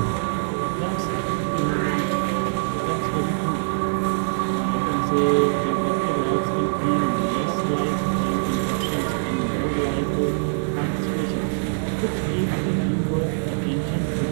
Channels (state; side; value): silent; left; 63 dB below the other